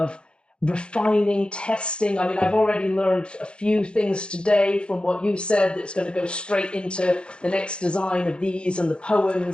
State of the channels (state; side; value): late; right; 0.055 ms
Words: refining, testing. I mean, I've already learned a few things today from what you said that's going to go straight into the next design of these and the